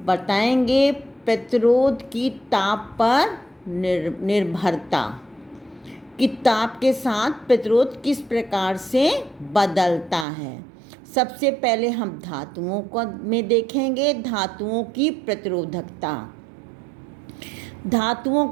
बताएंगे प्रतिरोध की ताप पर निर्भरता कि ताप के साथ प्रतिरोध किस प्रकार से बदलता है। सबसे पहले हम धातुओं को में देखेंगे धातुओं की प्रतिरोधकता। धातुओं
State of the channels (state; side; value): drops out; left; at 10.2 s